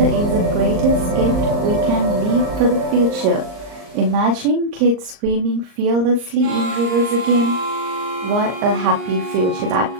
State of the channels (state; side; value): late; left; 39 ms